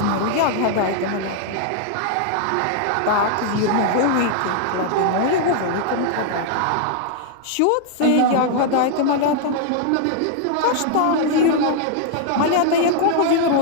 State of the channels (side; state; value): both; different; correlation -0.01